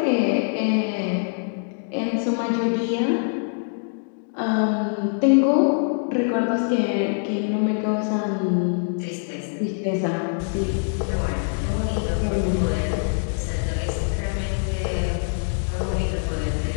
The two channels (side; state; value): right; silent; digital silence